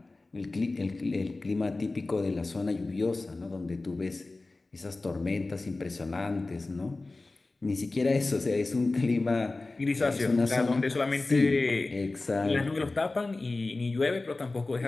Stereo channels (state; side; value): quieter; right; 3.3 dB